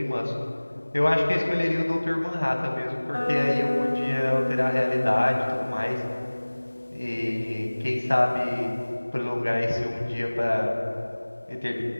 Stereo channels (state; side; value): inverted; both; correlation -1.00